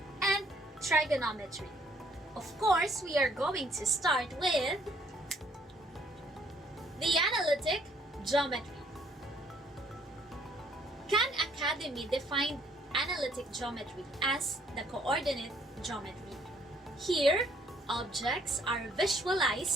and trigonometry. Of course, we are going to start with the analytic geometry. Khan Academy defined analytic geometry as the coordinate geometry. Here, objects are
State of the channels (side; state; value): both; normal; correlation 0.64